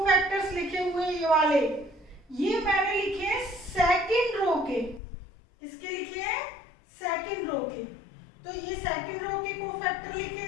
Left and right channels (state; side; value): drops out; right; at 5.0 s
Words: लिखे हुए हैं ये वाले, ये मैंने लिखे हैं सेकंड रो के। किसके लिखे हैं, सेकंड रो के। तो ये सेकंड रो के कोफैक्टर